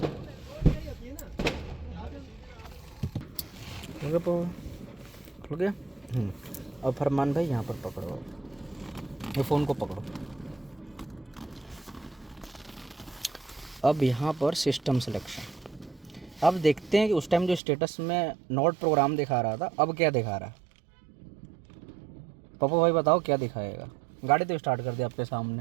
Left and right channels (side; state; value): left; drops out; at 17.6 s